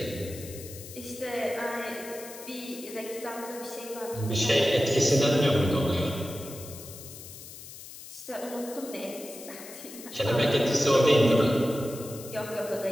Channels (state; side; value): noise; left; hiss, 14 dB below the sound